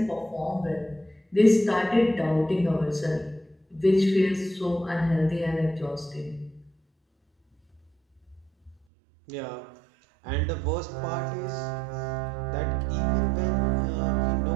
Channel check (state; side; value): drops out; left; at 8.8 s